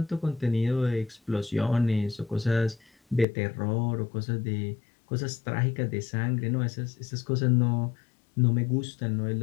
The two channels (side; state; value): right; drops out; at 3.2 s